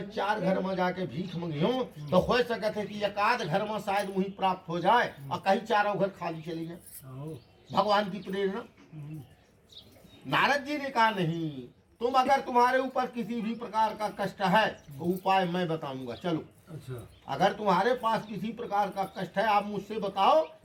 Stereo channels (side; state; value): both; identical; correlation 1.00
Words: 4 घर में जाके भीख मंगियो तो हो सकता है कि एकाध घर में शायद वही प्राप्त हो जाए और कहीं 4 घर खाली चले जाए। भगवान की प्रेरणा। नारद जी ने कहा, नहीं, तुम अगर तुम्हारे ऊपर किसी भी प्रकार का कष्ट है तो उपाय मैं बताऊंगा, चलो। अच्छा, अगर तुम्हारे पास किसी प्रकार का कष्ट है आप मुझसे बताओ